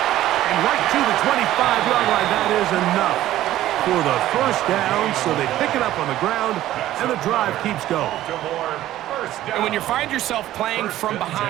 And right to the 25-yard line. That is enough for the first down. So they pick it up on the ground, and the drive keeps going. And when you find yourself playing from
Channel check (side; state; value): left; quieter; 14.0 dB